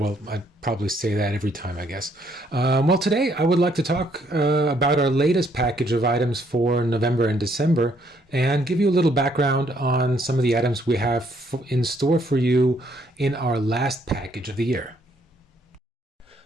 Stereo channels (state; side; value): normal; both; correlation 0.69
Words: probably say that every time, I guess. Well, today I would like to talk about our latest package of items for November and December and give you a little background on some of the items we have in store for you in our last package of the year.